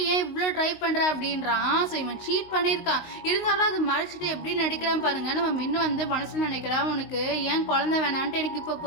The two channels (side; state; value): right; late; 19 ms